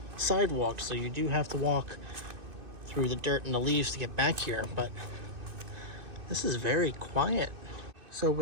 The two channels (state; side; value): late; left; 2.6 ms